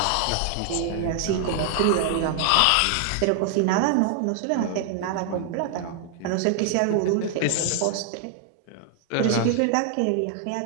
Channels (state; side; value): different; both; correlation 0.00